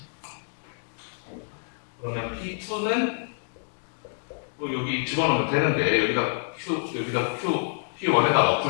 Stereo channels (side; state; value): right; silent; digital silence